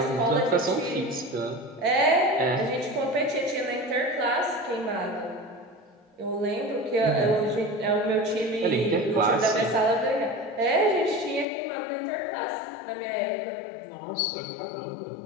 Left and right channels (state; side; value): drops out; right; at 11.5 s